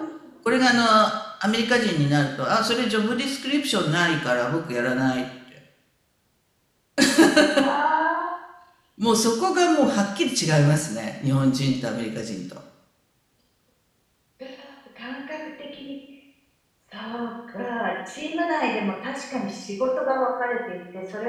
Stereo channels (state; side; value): identical; both; correlation 1.00